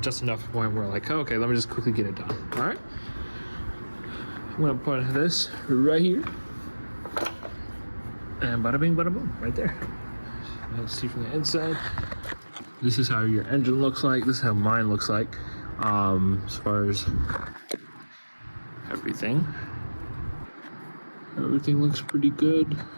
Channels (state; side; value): inverted; both; correlation -1.00